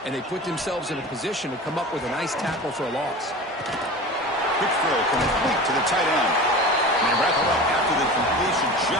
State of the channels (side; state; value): both; normal; correlation 0.34